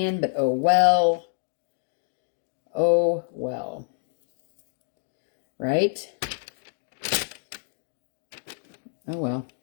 but oh well. Oh well. Right? Oh well.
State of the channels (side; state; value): right; silent; digital silence